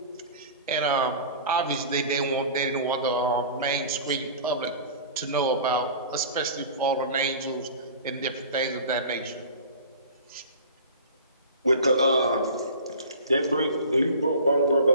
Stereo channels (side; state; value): both; inverted; correlation -0.39